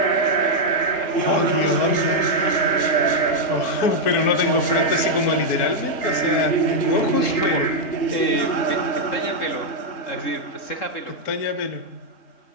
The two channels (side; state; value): right; late; 4.4 ms